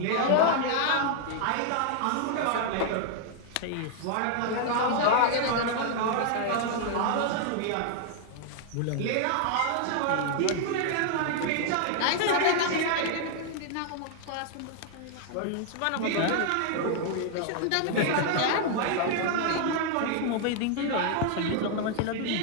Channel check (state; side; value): different; both; correlation 0.00